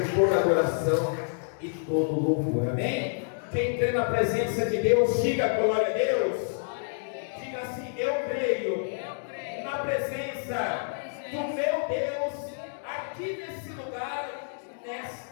toda adoração e todo louvor. Amém? Quem crê na presença de Deus, diga glória a Deus. Diga assim: eu creio na presença do meu Deus aqui nesse lugar,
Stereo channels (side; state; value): right; silent; digital silence